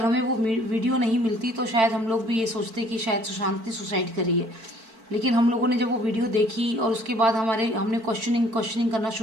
हमें वो वीडियो नहीं मिलती तो शायद हम लोग भी ये सोचते कि शायद सुशांत ने सुसाइड करी है। लेकिन हम लोगों ने जब वो वीडियो देखी और उसके बाद हमने क्वेश्चनिंग करना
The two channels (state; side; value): late; left; 4.5 ms